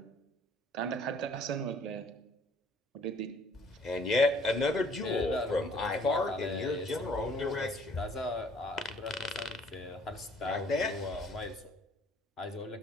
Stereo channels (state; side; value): normal; both; correlation 0.58